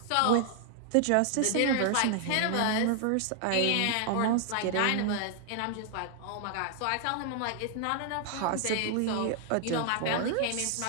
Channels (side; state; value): both; different; correlation 0.00